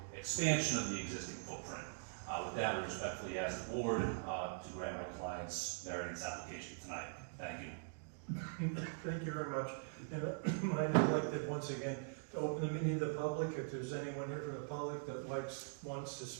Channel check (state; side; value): silent; left; digital silence